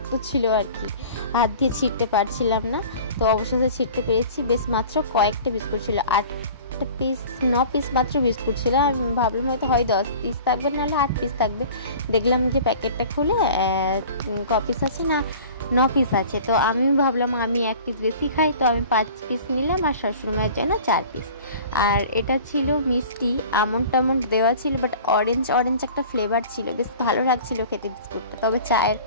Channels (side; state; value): both; inverted; correlation -0.43